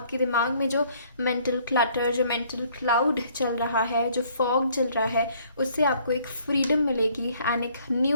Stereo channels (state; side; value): inverted; both; correlation -0.62